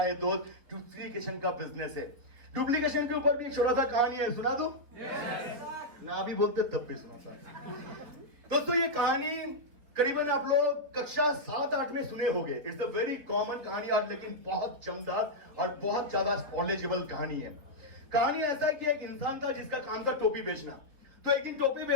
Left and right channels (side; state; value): left; late; 4.4 ms